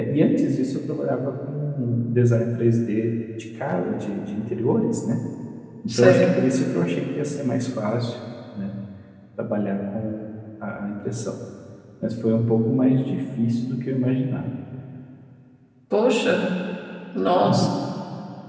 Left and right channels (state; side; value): identical; both; correlation 1.00